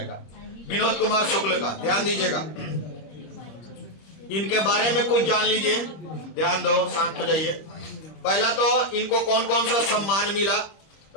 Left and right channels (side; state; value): right; late; 25 ms